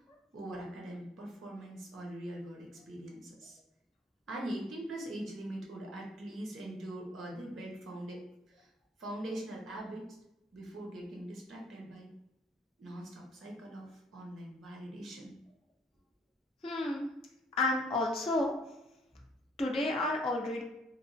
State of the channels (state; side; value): normal; both; correlation 0.62